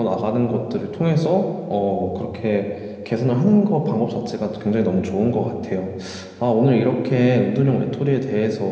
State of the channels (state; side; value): identical; both; correlation 1.00